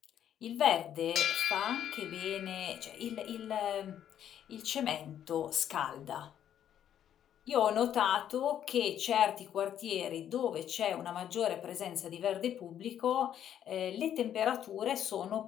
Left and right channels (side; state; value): right; quieter; 10.1 dB